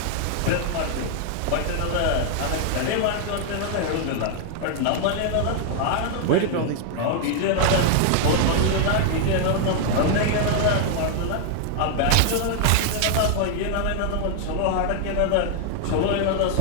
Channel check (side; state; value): both; different; correlation 0.00